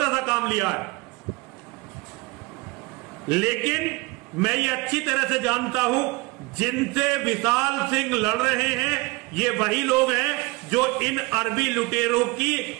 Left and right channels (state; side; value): quieter; left; 23.8 dB